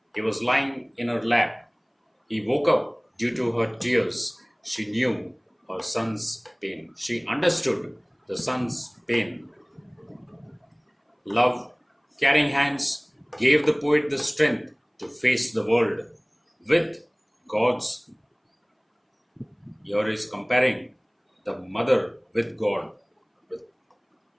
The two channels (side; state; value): both; identical; correlation 1.00